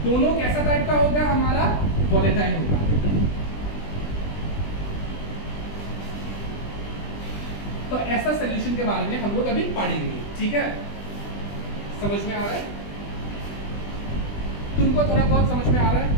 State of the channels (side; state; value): right; late; 20 ms